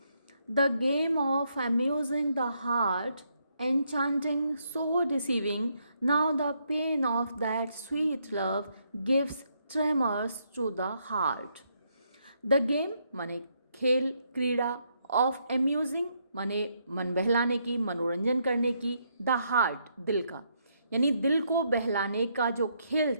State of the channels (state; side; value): inverted; both; correlation -0.75